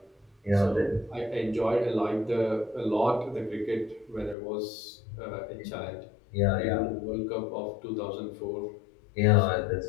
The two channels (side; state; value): right; drops out; at 4.4 s